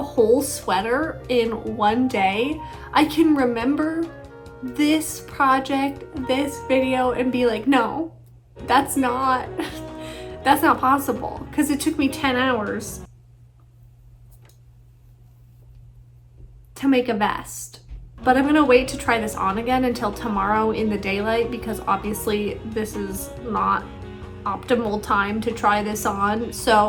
whole sweater in one day, I can remember this project, this video, and be like, no, that's not possible, because it took me 10 hours to make a vest. But I'm gonna wait to try this on again until tomorrow in the daylight, because obviously this is not optimal time to try this on.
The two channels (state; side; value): identical; both; correlation 1.00